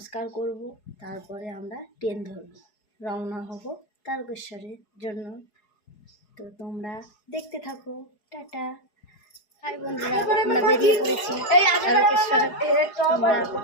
করব, তারপরে আমরা ট্রেন ধরব, রওনা হব তারকেশ্বরের জন্য। তো তোমরা দেখতে থাকো। টাটা। হাই বন্ধুরা, আমরা বেরিয়ে পড়েছি তারকেশ্বর। তোমরা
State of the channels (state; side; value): late; right; 4.8 ms